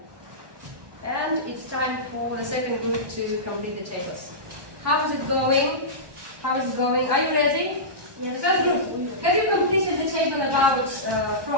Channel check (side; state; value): left; late; 1.2 ms